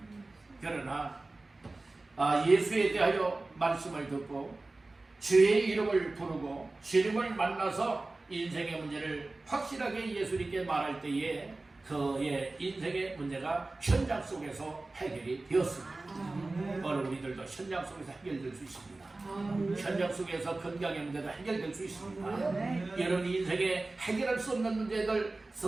그러나 예수에 대하여 말씀을 듣고 주의 이름을 부르고 주님을 만나서 인생의 문제를 확실하게 예수님께 말할 때에 그의 인생의 문제가 현장 속에서 해결이 되었습니다. 오늘 우리들도 현장 속에서 해결될 수 있습니다. 현장 속에서 건강의 문제도 해결될 수 있습니다. 여러분, 인생에 해결할 수 없는 문제들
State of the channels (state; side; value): quieter; left; 3.2 dB